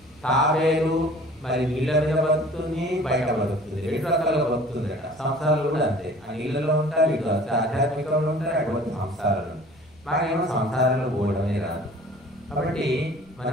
తావేరు మరి నీళ్ళ మీద బతుకుతుంది, బయట బతుకుతుంది, 2 రకాలుగా బతుకుతుంది అట. సంసారాలు కూడా అంతే, ఆ నీళ్ళలో ఉంటారు, ఇటు ఆధ్యాత్మికంలో ఉంటారు, అటువంటి సంసారాలు. మాకేమో సంసారంలో పోవడమే రాదు. కాబట్టి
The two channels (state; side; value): noise; left; rumble, 29 dB below the sound